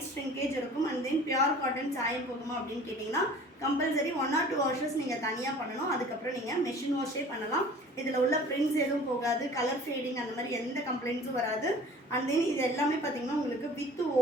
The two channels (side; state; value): both; normal; correlation 0.46